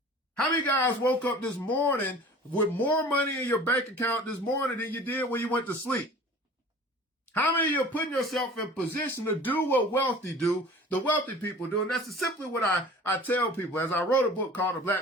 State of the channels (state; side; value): normal; both; correlation 0.44